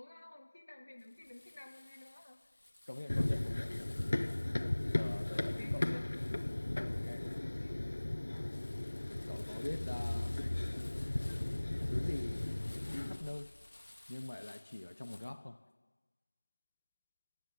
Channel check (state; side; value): inverted; both; correlation -1.00